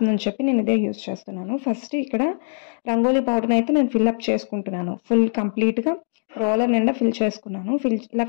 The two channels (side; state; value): right; silent; digital silence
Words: చెప్పి నేను ఇదే యూజ్ చేస్తున్నాను. ఫస్ట్ ఇక్కడ రంగోలీ పౌడర్ని అయితే నేను ఫిల్అప్ చేసుకుంటున్నాను. ఫుల్ కంప్లీట్గా రోలర్ నిండా ఫిల్ చేసుకున్నాను. ఇలా